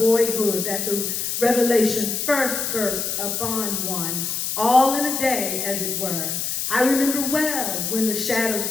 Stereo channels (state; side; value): noise; left; hiss, 2 dB below the sound